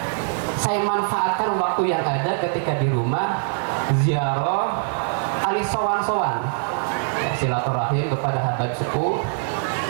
saya manfaatkan waktu yang ada ketika di rumah ziarah ali sowan-sowan silaturahim kepada Habib sepuh.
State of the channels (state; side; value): silent; left; digital silence